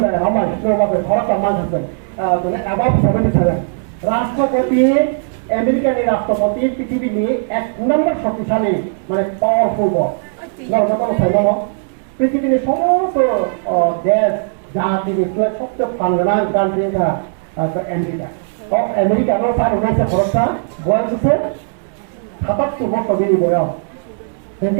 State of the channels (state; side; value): silent; left; 65 dB below the other